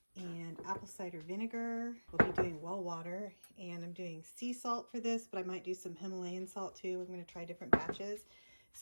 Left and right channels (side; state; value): both; inverted; correlation -1.00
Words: and apple cider vinegar. We'll be doing well water, and I'm doing sea salt for this, but I might do some Himalayan salt too. I'm going to try different batches.